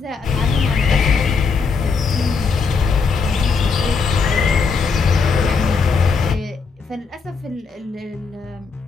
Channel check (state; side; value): quieter; right; 5.0 dB